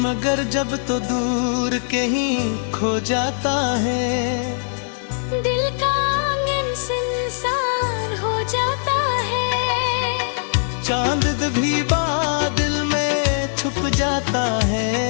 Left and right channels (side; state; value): right; silent; 65 dB below the other